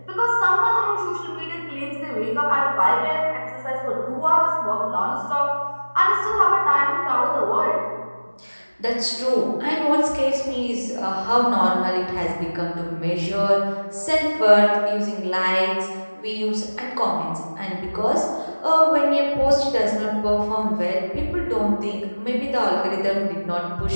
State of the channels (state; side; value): inverted; both; correlation -1.00